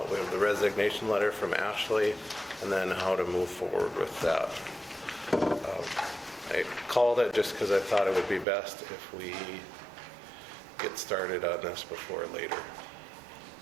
We have the resignation letter from Ashley and then how to move forward with that. I called it just because I thought it would be best if we get started on this before later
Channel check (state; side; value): drops out; left; at 8.5 s